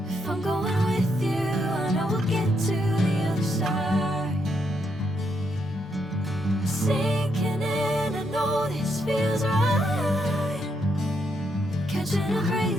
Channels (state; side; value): normal; both; correlation 0.78